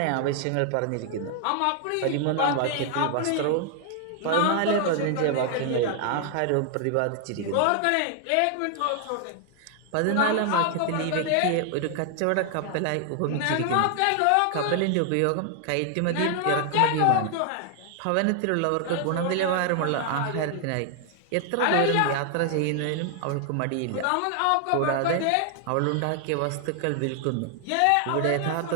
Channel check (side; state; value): both; different; correlation 0.00